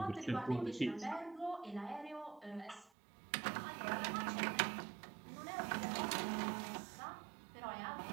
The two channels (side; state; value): left; drops out; at 2.9 s